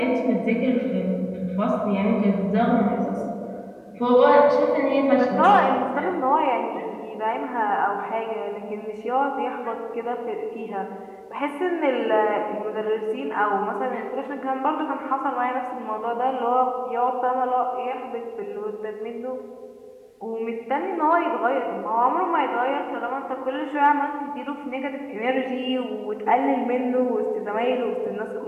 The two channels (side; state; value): both; identical; correlation 1.00